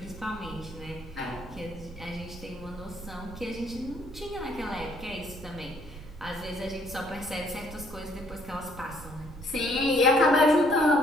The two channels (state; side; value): noise; right; rumble, 14 dB below the sound